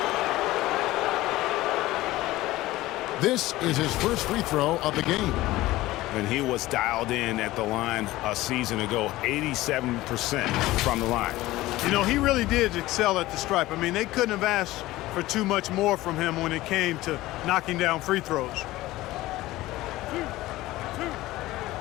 This is his first free throw of the game. And he was dialed in at the line a season ago, 87% from the line. You know, he really did excel at the stripe. I mean, they couldn't have asked for too much more from him when it came to knocking down free throws.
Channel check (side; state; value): right; quieter; 17.5 dB